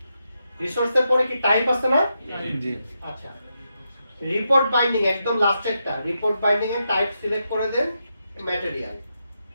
রিসোর্সের পরে কি টাইপ আছে না? জি আচ্ছা, রিপোর্ট বাইন্ডিং একদম লাস্টেরটা, রিপোর্ট বাইন্ডিং এর টাইপ সিলেক্ট করে দেন ম্যাটেরিয়াল।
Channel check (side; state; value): both; inverted; correlation -0.84